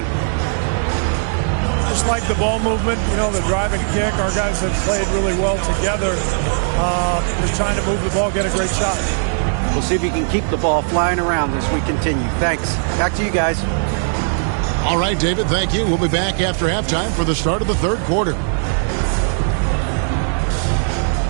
Just like the ball movement, the driving kick. Our guys have played really well together. Just trying to move the ball, get a great shot. We'll see if you can keep the ball flying around as we continue. Thanks. Back to you guys. All right, David, thank you. We'll be back after halftime for the start of the third quarter.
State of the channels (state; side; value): silent; left; digital silence